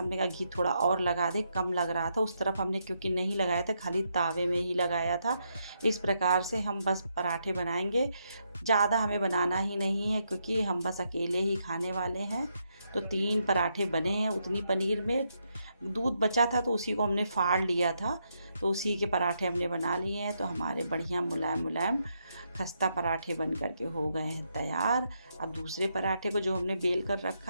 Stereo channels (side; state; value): both; inverted; correlation -0.79